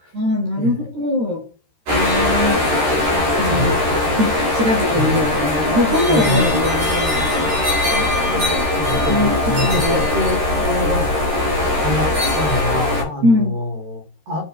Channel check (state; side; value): late; left; 13 ms